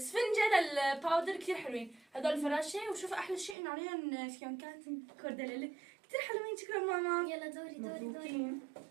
للباودر كثير حلوين هذول الفراشة. وشوفوا أحلى شيء إنه عليهم فيونكات كورديليلي كثير حلوين. شكرا ماما. يلا دوري. مبروكين.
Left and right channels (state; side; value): drops out; left; at 3.6 s